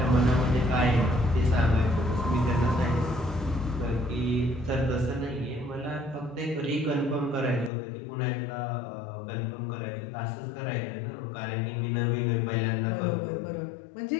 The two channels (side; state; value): right; drops out; at 7.7 s